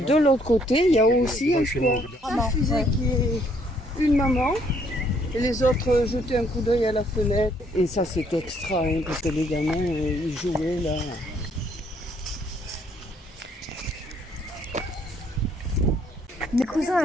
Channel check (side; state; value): both; normal; correlation 0.66